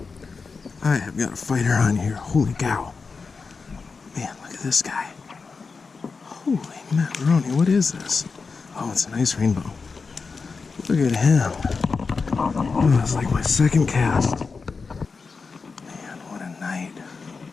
I have got a fighter on here. Holy cow. Man, look at this guy. Holy macaroni, what is this? Oh, it's a nice rainbow. Look at him. Oh, it's like my second cast. Man, what a night.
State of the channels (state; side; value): quieter; right; 4.7 dB